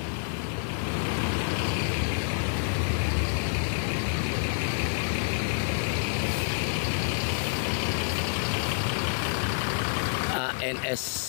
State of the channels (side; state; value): right; silent; digital silence